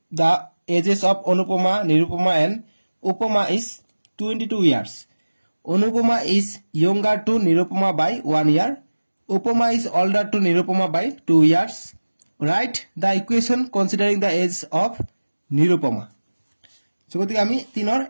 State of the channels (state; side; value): inverted; both; correlation -1.00